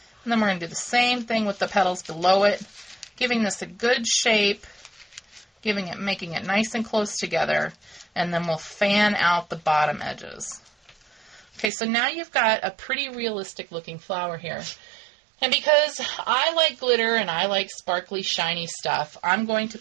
And then we're going to do the same thing with the petals below it, giving this a good shape, making it nice and close together, and then we'll fan out the bottom edges. Okay, so now you've got a pretty realistic looking flower here. And because I like glitter and I like sparkly, shiny stuff, I'm going to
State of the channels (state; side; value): drops out; left; at 11.7 s